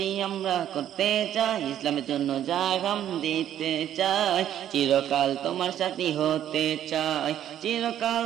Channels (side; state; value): left; quieter; 11.0 dB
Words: আমরা করতে চাই, ইসলামের জন্য জাগাম দিতে চাই। চিরকাল তোমার সাথী হতে চাই, চিরকাল